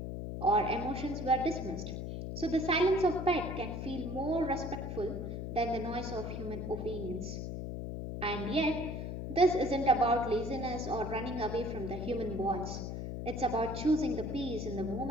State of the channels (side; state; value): left; noise; hum, 5 dB below the sound